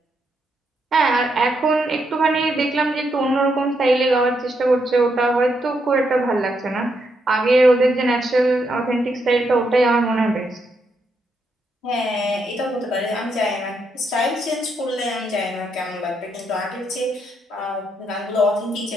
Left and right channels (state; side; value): normal; both; correlation 0.79